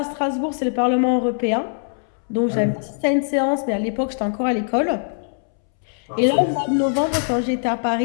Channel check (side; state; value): right; silent; 64 dB below the other